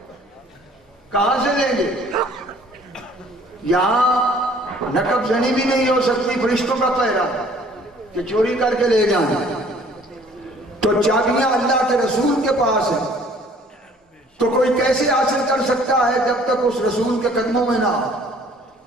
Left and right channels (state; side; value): normal; both; correlation 0.55